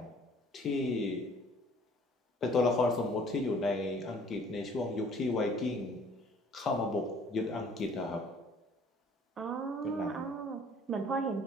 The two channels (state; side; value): normal; both; correlation 0.55